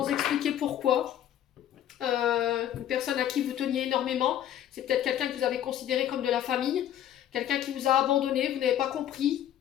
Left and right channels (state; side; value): quieter; right; 11.1 dB